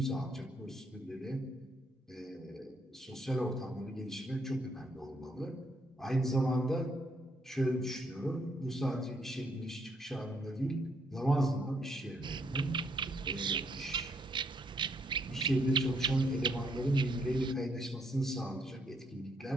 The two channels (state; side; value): normal; both; correlation 0.72